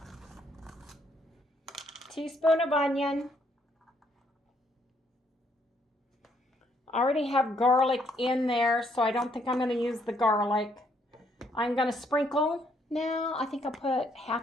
teaspoon of onion. I already have garlic in there, so I don't think I'm going to use the garlic. I'm going to sprinkle. Now, I think I'll put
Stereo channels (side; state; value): both; normal; correlation 0.70